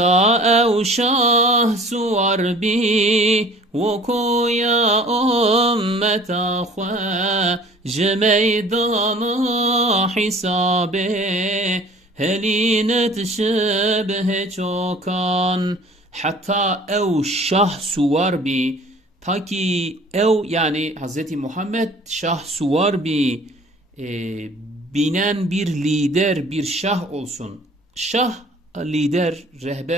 evşah suvar bi ve koya ümmeta khwa meydana hisabe helinet şebhe çokan hatta ev şah suvar bi ta ki ev yani Hz. Muhammed şah suvar bi binen bir lider bir şah olsun. Şah lider,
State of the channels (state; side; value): normal; both; correlation 0.49